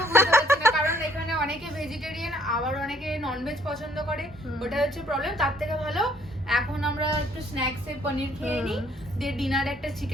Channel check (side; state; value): both; normal; correlation 0.63